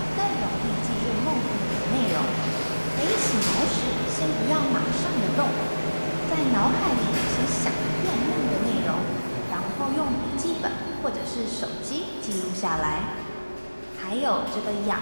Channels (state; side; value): inverted; both; correlation -1.00